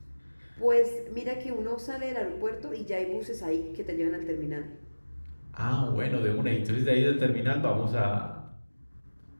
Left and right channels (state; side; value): inverted; both; correlation -1.00